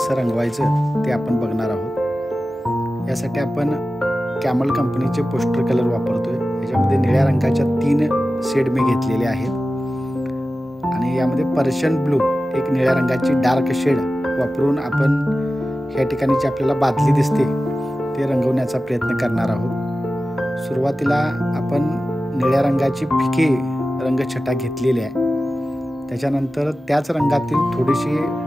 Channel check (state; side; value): normal; both; correlation 0.94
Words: रंगवायचं ते आपण बघणार आहोत। यासाठी आपण कॅमल कंपनीचे पोस्टर कलर वापरतोय। याच्यामध्ये निळ्या रंगाच्या 3 शेड मी घेतलेले आहेत आणि यामध्ये पर्शियन ब्लू एक निळ्या रंगाची डार्क शेड वापरून आपण ह्या ठिकाणी जी आपल्याला बादली दिसते ते रंगवण्याचा प्रयत्न करणार आहोत। सुरुवातीला आपण निळ्या रंगाची फिकी रंगछटा घेतलेली आहे। त्याच्यानंतर त्याच रंगातील थोडीशी